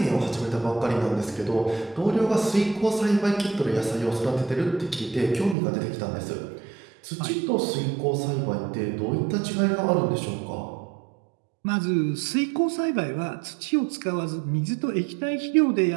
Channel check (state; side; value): drops out; left; at 5.6 s